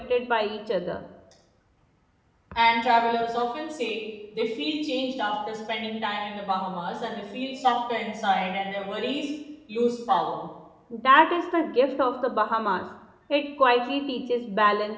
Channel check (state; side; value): identical; both; correlation 1.00